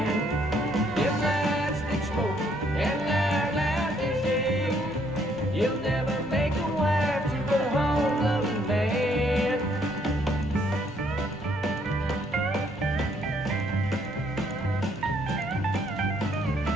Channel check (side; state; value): both; normal; correlation 0.68